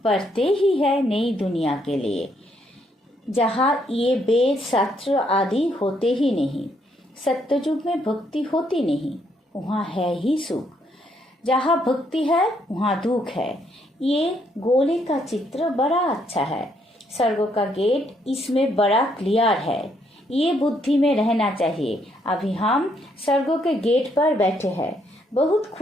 पढ़ते ही है नई दुनिया के लिए, जहाँ ये वेद शास्त्र आदि होते ही नहीं। सत्ययुग में भक्ति होती नहीं, वहाँ है ही सुख। जहाँ भक्ति है वहाँ दुख है। ये गोले का चित्र बड़ा अच्छा है। स्वर्ग का गेट इसमें बड़ा क्लियर है। ये बुद्धि में रहना चाहिए। अभी हम स्वर्गों के गेट पर बैठे हैं, बहुत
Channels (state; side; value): normal; both; correlation 0.72